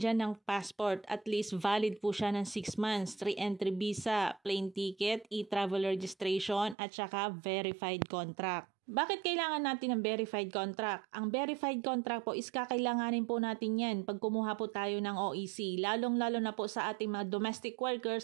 dyan ng passport, at least valid po siya ng 6 months, 3 entry visa, plane ticket, e-travel registration, at saka verified contract. Bakit kailangan natin ng verified contract? Ang verified contract po is kakailanganin po natin yan pag kumuha po tayo ng OEC, lalong-lalo na po sa ating mga domestic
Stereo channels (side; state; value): left; drops out; at 6.8 s